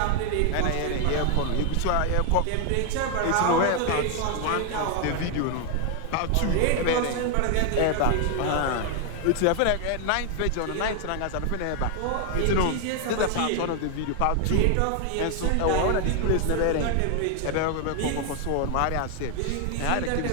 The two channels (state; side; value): different; both; correlation 0.00